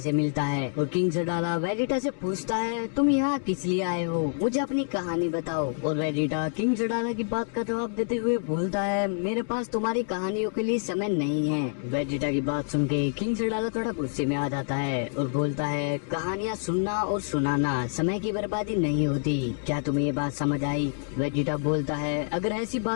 मिलता है और किंग सडाला वेजिटा से पूछता है तुम यहाँ किस लिए आए हो, मुझे अपनी कहानी बताओ। और वेजिटा किंग सडाला की बात का जवाब देते हुए बोलता है मेरे पास तुम्हारी कहानियों के लिए समय नहीं है। वेजिटा की बात सुन के किंग सडाला थोड़ा गुस्से में आ जाता है और बोलता है कहानियाँ सुनना और सुनाना समय की बर्बादी नहीं होती, क्या तुम्हें ये बात समझ आई? वेजिटा बोलता है अगर ऐसी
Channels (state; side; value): silent; right; digital silence